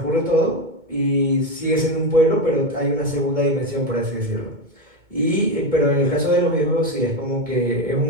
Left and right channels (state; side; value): late; left; 2.2 ms